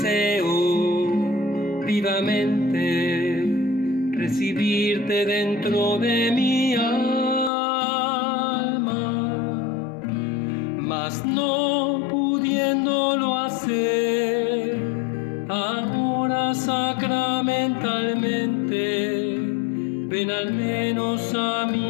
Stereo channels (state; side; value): drops out; right; at 7.5 s